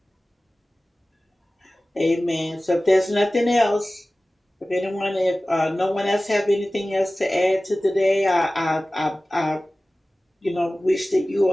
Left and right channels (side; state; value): both; normal; correlation 0.97